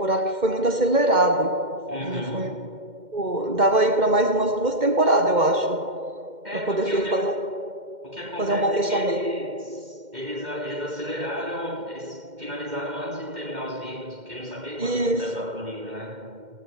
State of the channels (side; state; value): left; late; 2.1 ms